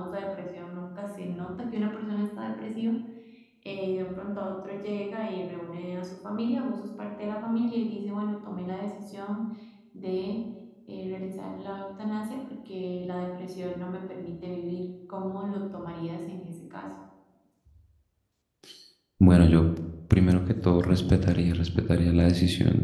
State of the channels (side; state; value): both; identical; correlation 1.00